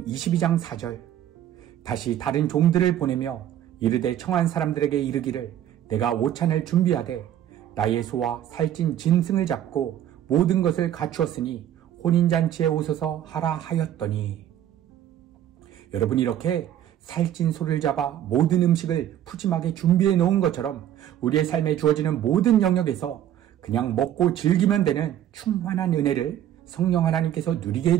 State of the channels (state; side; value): quieter; left; 11.3 dB